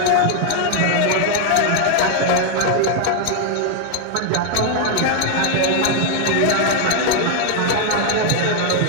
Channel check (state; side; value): different; both; correlation 0.00